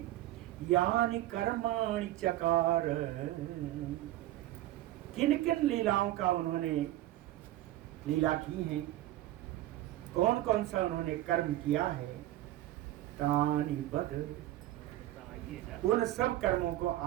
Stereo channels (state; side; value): quieter; left; 15.0 dB